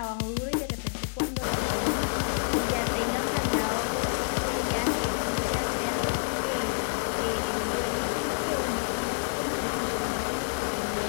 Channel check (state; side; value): silent; right; digital silence